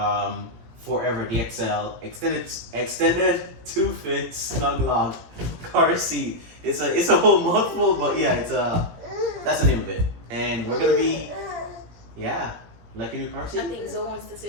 4ever DLX Extended 2-fit SnugLock car seat. It's a whole mouthful, but yeah, that's the name of it. And we're gonna be like a new car seat. I think Zoe wants to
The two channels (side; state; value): left; late; 17 ms